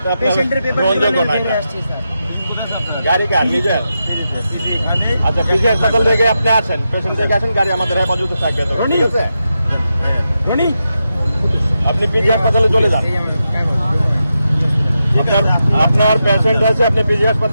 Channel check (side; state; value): both; inverted; correlation -0.88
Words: পেশেন্টের পেপার নিয়ে আসছি স্যার। গাড়ি কার নিজের? আচ্ছা, পিজি হাসপাতাল থেকে আপনি আসেন, পেশেন্ট থেকে আসেন, গাড়ি আমাদের হেফাজতে থাকবে, ঠিক আছে? আপনি পিজি হাসপাতালে চলে যান, আপনার পেশেন্ট আছে, আপনি পিজি